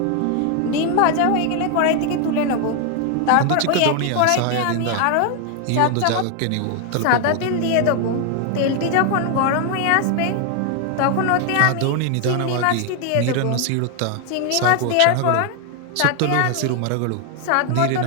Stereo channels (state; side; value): different; both; correlation 0.00